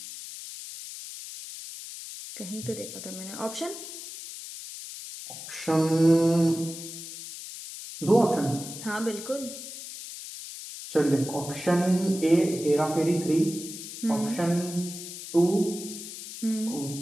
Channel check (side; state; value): left; noise; hiss, 11 dB below the sound